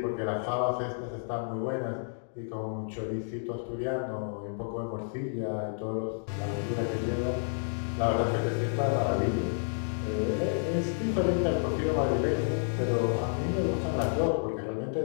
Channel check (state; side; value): silent; right; digital silence